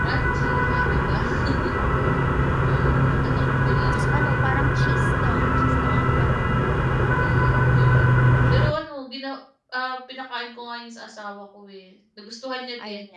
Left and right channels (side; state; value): both; identical; correlation 1.00